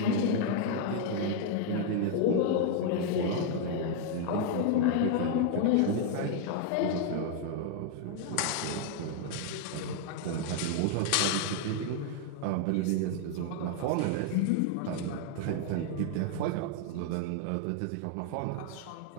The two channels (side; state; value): both; different; correlation 0.00